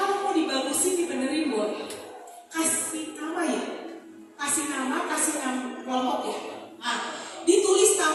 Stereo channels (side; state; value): both; identical; correlation 1.00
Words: mau dibagusin dibenerin boleh. Kasih nama ya, kasih nama kelompok ya. Nah, ditulis